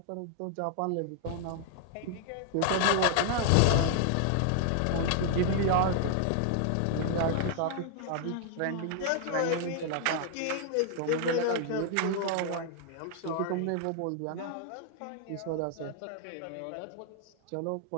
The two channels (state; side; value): different; both; correlation 0.00